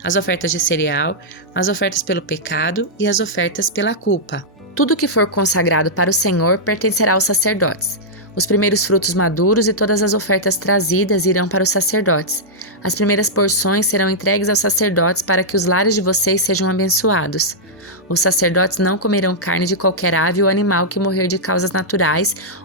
As ofertas de cereal, as ofertas pelo pecado e as ofertas pela culpa. Tudo que for consagrado para o Senhor pertencerá aos sacerdotes. Os primeiros frutos maduros e todas as ofertas trazidas irão para os sacerdotes. As primeiras porções serão entregues aos sacerdotes para que os lares de vocês sejam abençoados. Os sacerdotes não comerão carne de qualquer ave ou animal que morrer de causas naturais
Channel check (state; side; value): normal; both; correlation -0.09